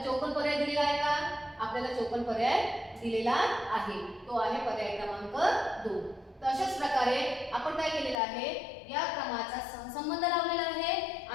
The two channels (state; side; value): drops out; right; at 8.2 s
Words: 54 पर्याय दिलेला आहे का आपल्याला 54 पर्याय दिलेला आहे, तो आहे पर्याय क्रमांक 2. तर अशाच प्रकारे आपण काय केलेलं आहे या क्रमाचा सहसंबंध लावलेला आहे